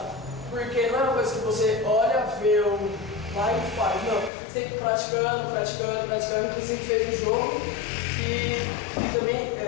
Porque não é uma coisa que você olha, vê, vai e faz. Não, você tem que ir praticando. Inclusive a gente fez um jogo e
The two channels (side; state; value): right; drops out; at 4.3 s